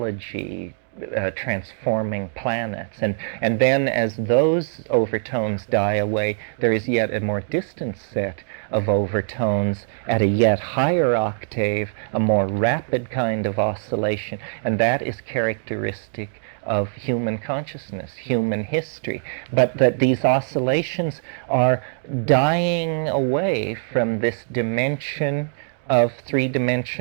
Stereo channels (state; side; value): silent; left; digital silence